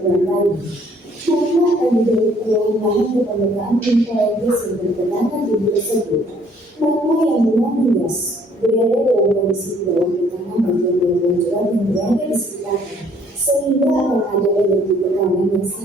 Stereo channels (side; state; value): both; normal; correlation 0.61